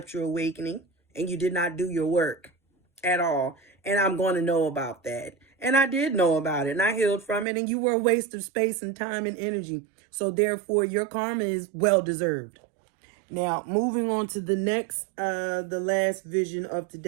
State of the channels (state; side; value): drops out; left; at 7.5 s